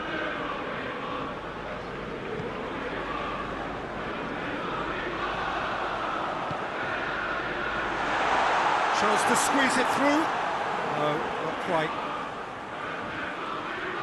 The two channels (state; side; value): identical; both; correlation 1.00